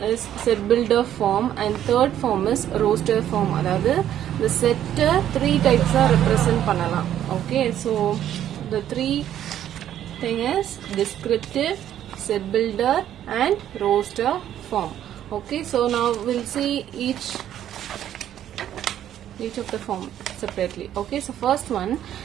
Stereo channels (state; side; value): quieter; left; 11.1 dB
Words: is set builder form, and third form is roster form. அதாவது the set three types are represent பண்ணலாம். Okay, so the three thing is descriptive, set builder and roster form. Okay, so now we'll see each of the form separately. Okay, so first one,